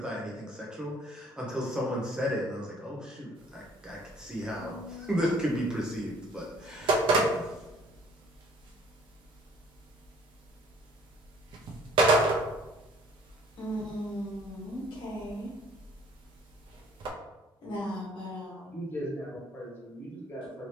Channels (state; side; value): normal; both; correlation 0.56